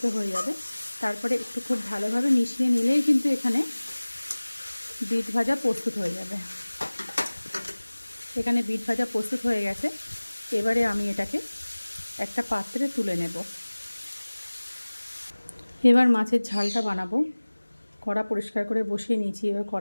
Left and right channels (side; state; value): both; inverted; correlation -1.00